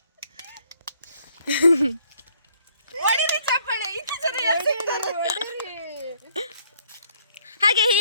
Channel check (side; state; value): both; inverted; correlation -0.64